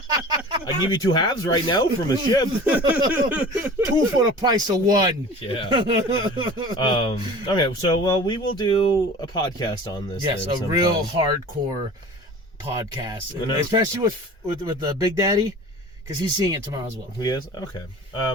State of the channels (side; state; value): both; normal; correlation 0.40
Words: I give you 2 halves right now from a ship. 2 for the price of 1. Yeah. Okay, so we will do a podcast on this. Yes, a real hardcore podcast, especially with the Big Daddy, because he's seeing it tomorrow as well. He is? Okay.